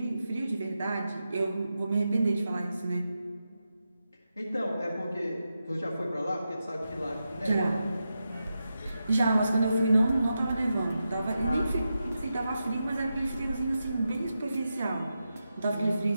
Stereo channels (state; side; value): inverted; both; correlation -0.89